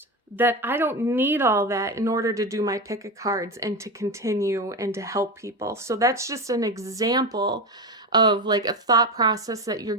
that I don't need all that in order to do my pick of cards and to continue and to help people. So that's just an example of like a thought process that you're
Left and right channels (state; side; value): normal; both; correlation 0.19